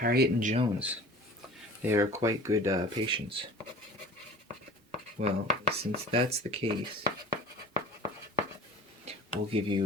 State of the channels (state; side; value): normal; both; correlation 0.42